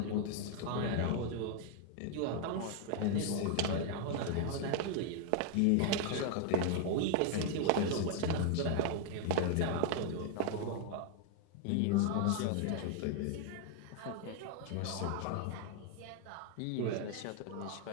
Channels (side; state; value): both; different; correlation 0.00